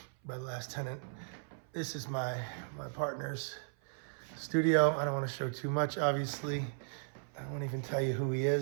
by the last tenant. This is my partner's studio. I don't want to show too much, obviously. I won't even tell you who he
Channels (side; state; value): left; silent; 54 dB below the other